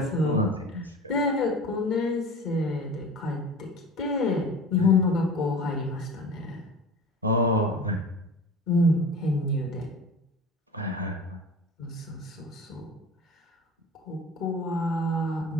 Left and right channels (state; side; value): normal; both; correlation 0.37